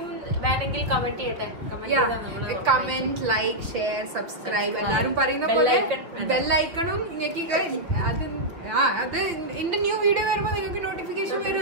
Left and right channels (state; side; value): late; left; 5.8 ms